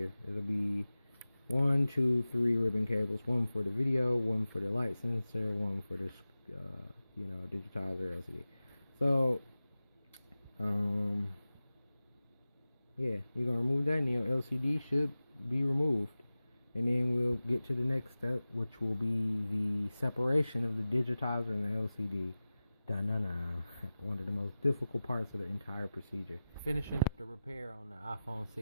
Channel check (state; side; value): inverted; both; correlation -0.96